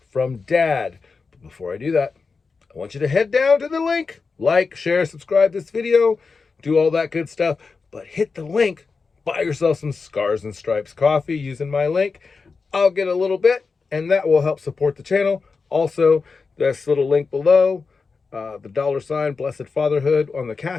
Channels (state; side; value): quieter; right; 4.6 dB